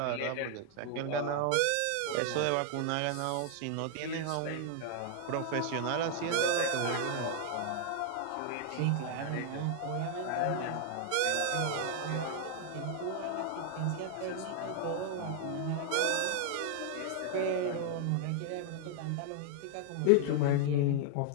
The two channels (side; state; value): both; different; correlation 0.00